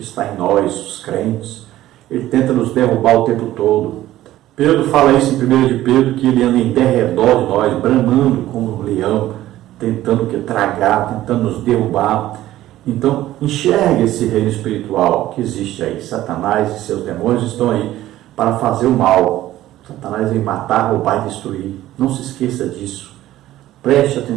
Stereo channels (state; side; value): quieter; left; 14.6 dB